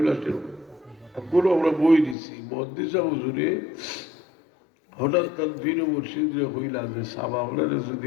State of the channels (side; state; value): right; drops out; at 2.1 s